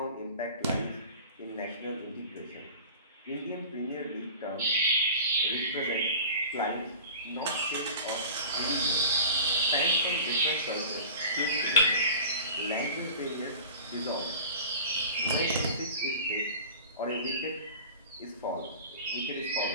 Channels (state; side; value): inverted; both; correlation -0.38